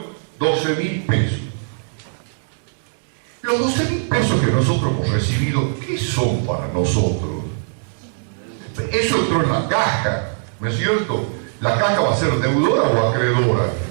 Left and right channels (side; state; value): left; silent; digital silence